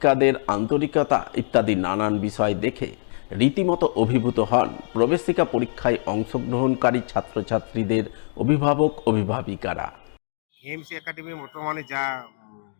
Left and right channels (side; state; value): right; silent; digital silence